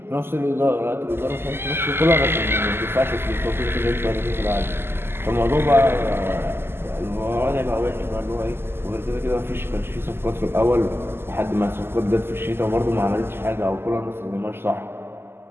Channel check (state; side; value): late; left; 0.11 ms